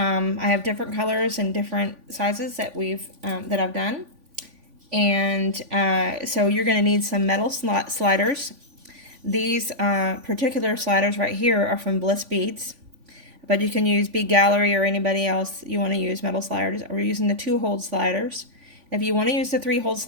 have different colors and different sizes that I've done, and so you're going to need some metal sliders. These particular sliders right here are from Bliss Beads, but you can use Bead Gallery or anybody else you want to use metal sliders. We're using the 2-hole sliders. If you want to use the 3-hole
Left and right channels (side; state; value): left; late; 3.5 ms